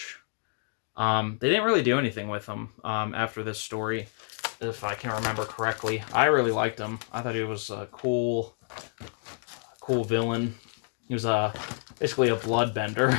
They didn't really do anything with him after this story, if I can remember correctly. I really liked him. I thought he was a cool villain. He was basically a bloodbender.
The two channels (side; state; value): right; silent; 57 dB below the other